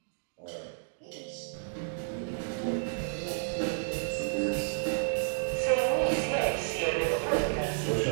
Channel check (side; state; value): left; silent; digital silence